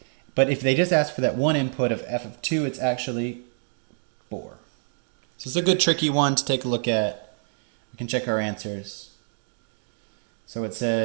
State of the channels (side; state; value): left; silent; digital silence